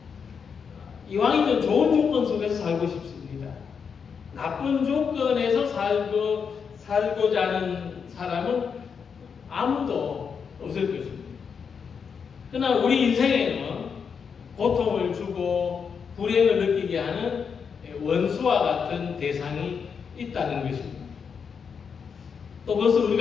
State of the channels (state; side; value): quieter; right; 6.4 dB